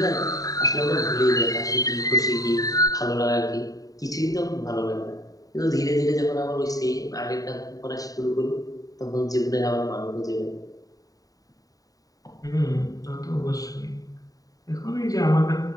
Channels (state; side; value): late; right; 0.18 ms